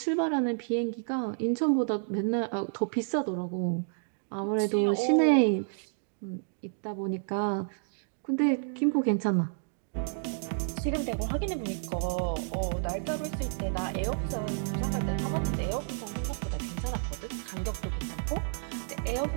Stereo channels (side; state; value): left; silent; digital silence